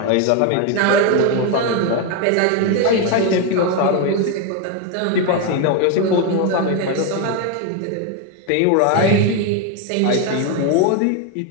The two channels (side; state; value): both; different; correlation 0.02